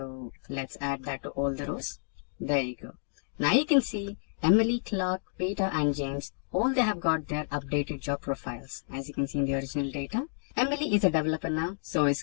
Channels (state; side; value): silent; right; digital silence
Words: let's add that to all the rows. There you go. Now you can see Emily, Clark, Peter and James, all they have got their updated job profiles. As you can see in the original data, Emily is a developer now, so is